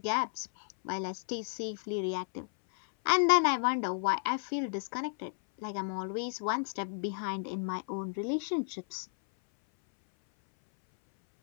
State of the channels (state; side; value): silent; right; 56 dB below the other